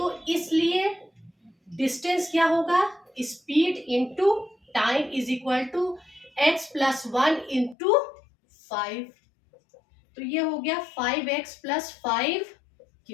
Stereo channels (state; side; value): drops out; right; at 7.8 s